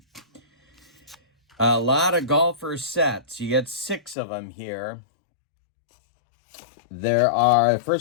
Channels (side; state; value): right; drops out; at 4.2 s